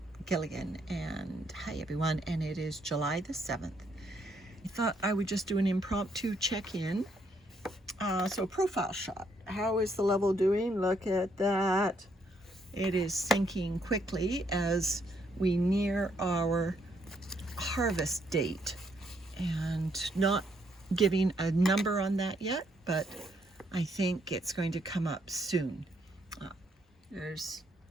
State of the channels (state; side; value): normal; both; correlation 0.72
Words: Gilligan, and hi everyone, and it is July the 7th. I thought I would just do an impromptu check-in. So profile shot. How is the level doing? Look at that. It is sinking quickly as we near our harvest date, and not giving a number on that yet, but I think it's going to come up soon. There's